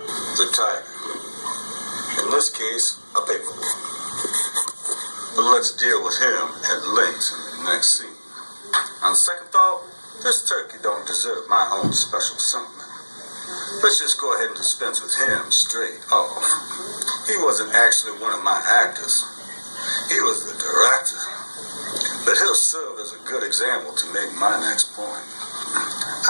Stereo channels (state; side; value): inverted; both; correlation -1.00